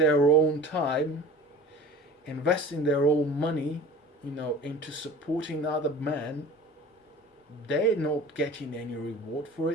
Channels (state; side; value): normal; both; correlation 0.40